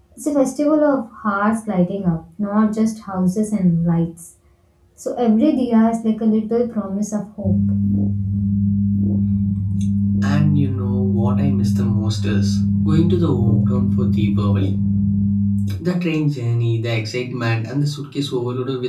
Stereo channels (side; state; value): both; identical; correlation 1.00